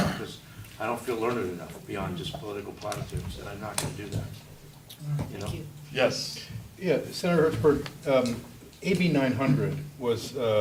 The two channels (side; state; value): both; identical; correlation 1.00